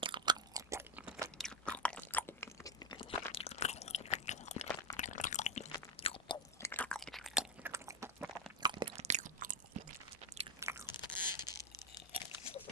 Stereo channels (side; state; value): both; normal; correlation 0.09